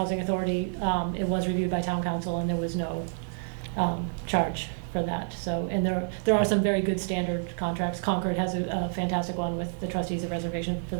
authority, it was reviewed by town council and there was no charge for that. So, and there are some very good standard contracts. Concord has a fantastic one with the trustees of reservation for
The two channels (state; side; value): silent; left; digital silence